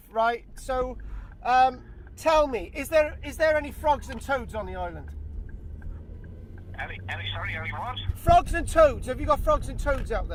right? So, tell me, is there any frogs and toads on the island? Any what? Frogs and toads. Have you got frogs and toads out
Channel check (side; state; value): both; identical; correlation 1.00